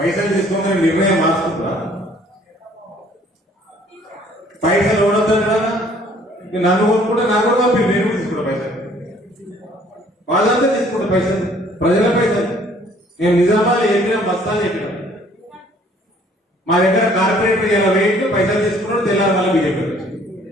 తీసుకోమని నిర్ణయం మార్చుకుంటా? పైసలు ఓడొద్దా? నన్ను కొనుక్కుంటే నాకు కూడా పంపి, నేను తీసుకుంటా పైసలు. వాళ్ళంతా తీసుకుంటా పైసలు, ప్రజల పైసలు. నేను నిజామాబాద్ చెప్పినా, బస్తాలు చెప్పినా. మా దగ్గర కార్పొరేటర్ ఇలా వెయిట్ పైసలు తీసుకున్నాడు, తెల్లారి మళ్ళీ బీజేపీ వచ్చి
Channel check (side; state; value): both; normal; correlation 0.58